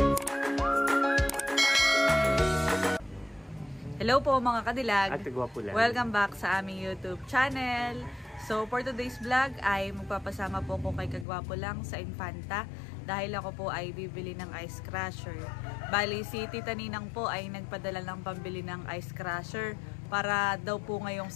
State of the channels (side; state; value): right; drops out; at 11.2 s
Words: Hello po mga kadilag. Ate Gwapo lang. Welcome back sa aming YouTube channel. So for today's vlog ay magpapasama po ko kay Kagwapo lang sa Infanta dahil ako po ay bibili ng ice crusher. Bali si Tita Ninang po ay nagpadala ng pambili ng ice crusher para daw po ngayong